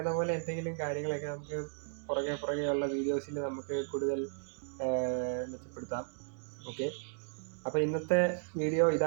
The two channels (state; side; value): silent; left; digital silence